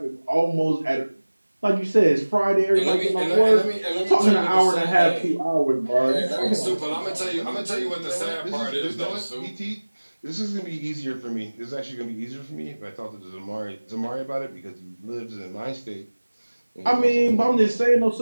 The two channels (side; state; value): both; inverted; correlation -1.00